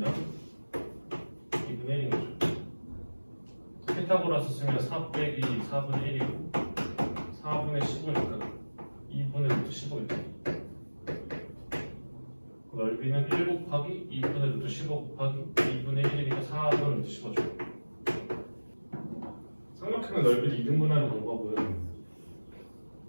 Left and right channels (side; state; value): both; inverted; correlation -1.00